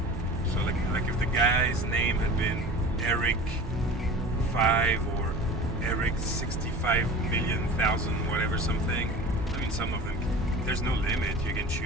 So like if the guy's name had been Eric 5 or Eric 65,000,000 whatever something. I mean, some of them, there's no limit. You can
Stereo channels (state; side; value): normal; both; correlation 0.37